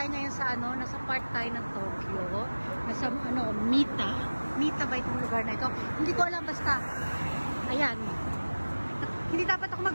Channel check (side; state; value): both; inverted; correlation -1.00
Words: ngayon sa nasa part tayo ng Tokyo. Nasa Mita. Mita ba itong lugar na ito? Hindi ko alam, basta. Ayan. Hindi dapat ako